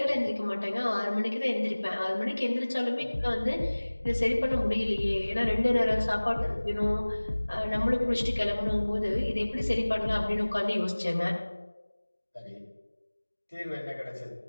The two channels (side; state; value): both; inverted; correlation -1.00